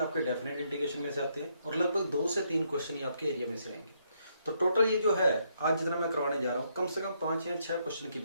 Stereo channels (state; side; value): inverted; both; correlation -0.74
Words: आपके डेफिनेट इंटीग्रेशन में से आते हैं और लगभग 2 से 3 क्वेश्चन ही आपके एरिया में से आएंगे। तो टोटल ये जो है आज जितना मैं करवाने जा रहा हूँ, कम से कम 5 या 6 क्वेश्चन की